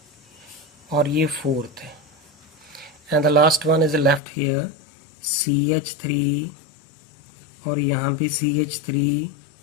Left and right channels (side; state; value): right; drops out; at 4.2 s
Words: और ये फोर्थ है. And the last one is the left here CH3 और यहाँ पे CH3